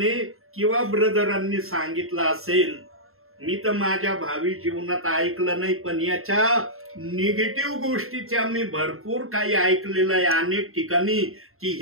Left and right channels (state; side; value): late; left; 0.62 ms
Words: किंवा ब्रदरांनी सांगितला असेल. मी तर माझ्या भावी जीवनात ऐकलं नाही, पण याच्या निगेटिव्ह गोष्टीच्या मी भरपूर काही ऐकलेलं आहे अनेक ठिकाणी, की